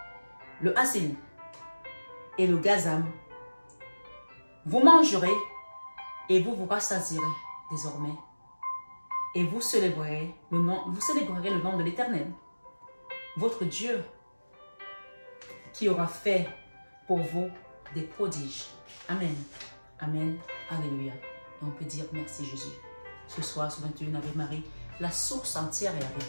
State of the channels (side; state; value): both; inverted; correlation -1.00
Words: le hassil et le gazam, vous mangerez et vous vous rassasierez désormais. Et vous célébrerez le nom de l'Éternel, votre Dieu, qui aura fait pour vous des prodiges. Amen. Amen. Alléluia. Et on peut dire merci Jésus. Ce soir, ce 21 avec Marie, la source entière est avec